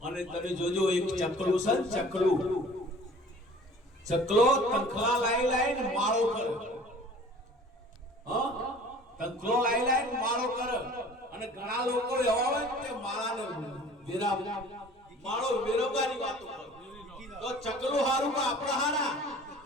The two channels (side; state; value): both; normal; correlation 0.47